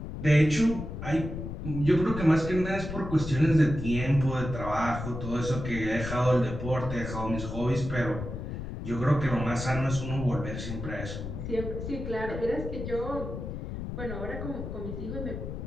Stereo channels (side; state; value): left; noise; rumble, 7 dB below the sound